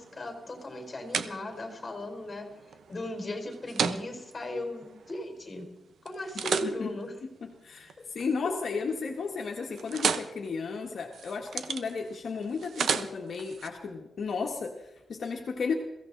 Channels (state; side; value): normal; both; correlation 0.78